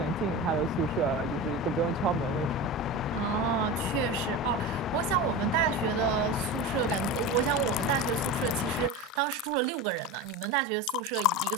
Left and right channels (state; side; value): normal; both; correlation 0.26